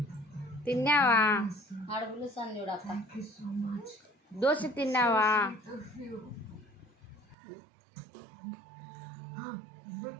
తిన్నావా ఆడ పిలుస్తాను చూడక్క దోశ తిన్నావా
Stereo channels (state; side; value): drops out; left; at 7.4 s